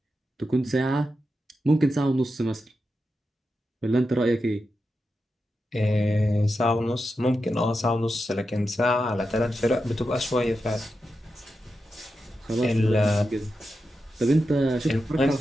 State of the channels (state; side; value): normal; both; correlation 0.89